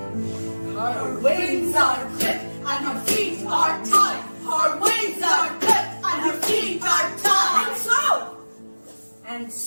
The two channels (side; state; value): both; inverted; correlation -1.00